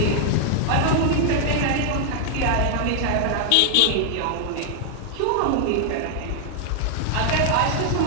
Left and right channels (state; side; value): different; both; correlation 0.00